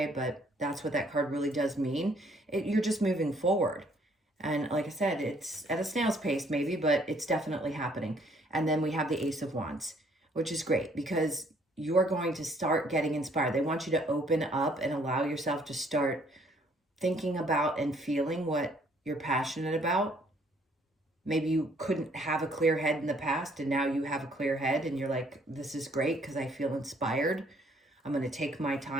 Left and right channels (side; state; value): both; normal; correlation 0.64